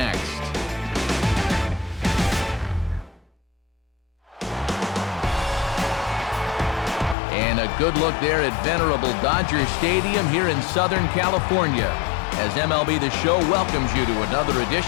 And a good look there at venerable Dodger Stadium here in Southern California, as MLB The Show welcomes you to another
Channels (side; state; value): right; drops out; at 7.2 s